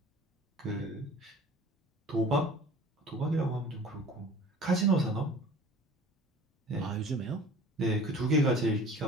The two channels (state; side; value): normal; both; correlation 0.45